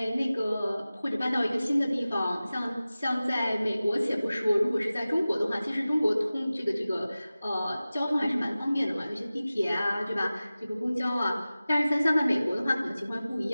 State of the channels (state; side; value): inverted; both; correlation -0.97